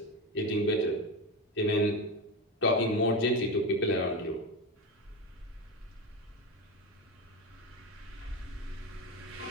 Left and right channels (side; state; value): both; normal; correlation 0.19